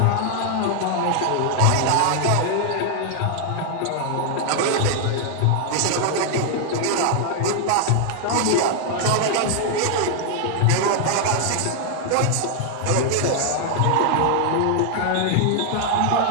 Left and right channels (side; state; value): both; different; correlation 0.00